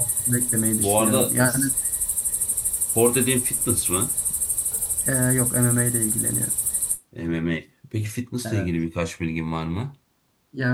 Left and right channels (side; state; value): both; identical; correlation 1.00